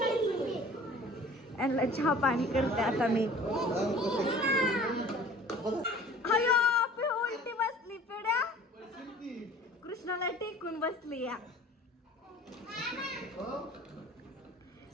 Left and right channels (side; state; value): both; normal; correlation 0.47